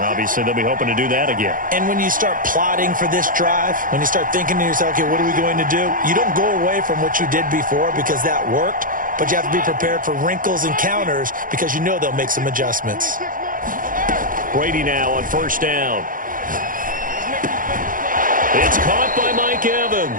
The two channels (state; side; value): late; left; 0.40 ms